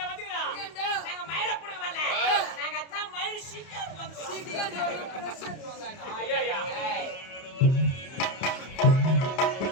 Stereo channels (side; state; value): right; late; 31 ms